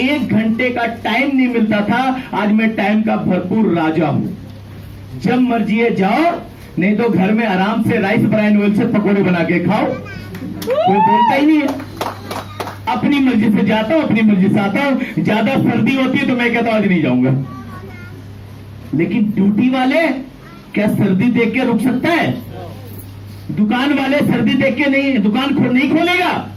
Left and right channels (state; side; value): identical; both; correlation 1.00